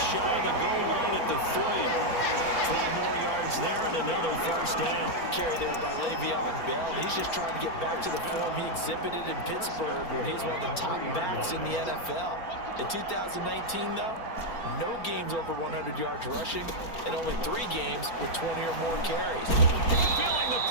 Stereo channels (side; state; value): right; late; 4.4 ms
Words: shy of the goal line at the 3. 12 more yards there and another first down. Carry there by Le'Veon Bell. He's just trying to get back to the form he exhibited in Pittsburgh when he's one of the top backs in the NFL. In 2019, though, no games over 100 yards rushing and only 3 games with 20 or more carries. Feeling the